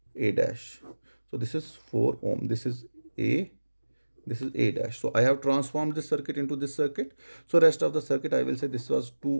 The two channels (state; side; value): inverted; both; correlation -1.00